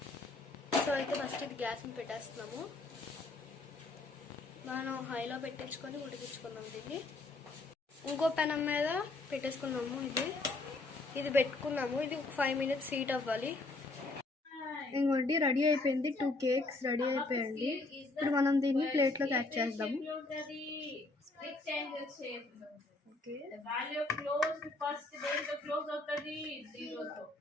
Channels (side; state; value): right; quieter; 3.2 dB